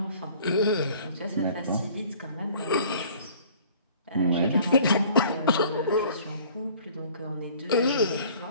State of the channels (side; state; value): both; inverted; correlation -0.52